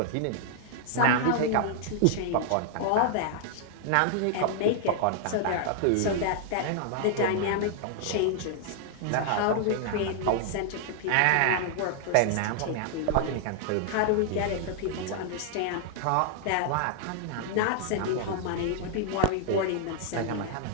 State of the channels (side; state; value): both; different; correlation -0.01